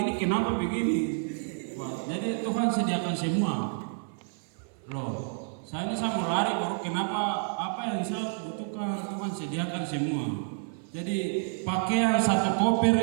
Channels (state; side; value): silent; left; 56 dB below the other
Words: kenapa begini. Wah, jadi Tuhan sediakan semua. Loh. Saya mau lari baru kenapa apa yang saya butuhkan Tuhan sediakan semua. Jadi pakaian satu koper